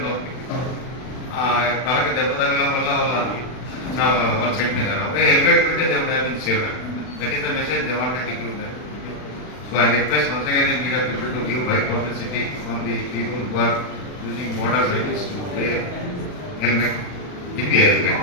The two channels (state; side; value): late; right; 40 ms